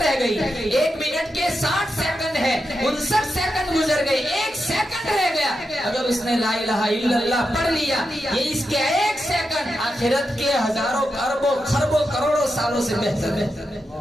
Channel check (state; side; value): normal; both; correlation 0.87